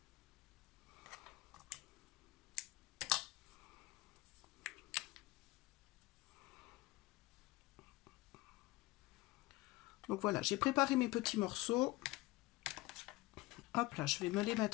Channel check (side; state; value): right; quieter; 20.1 dB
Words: Donc voilà, j'ai préparé mes petits morceaux. Hop là, je vais me les